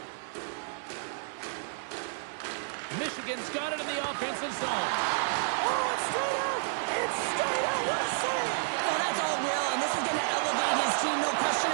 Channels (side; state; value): left; silent; 57 dB below the other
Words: Michigan's got it in the offensive zone. Oh, it's straight out! It's straight out! What a save! Oh, that's all Will, and this is going to elevate his team, no question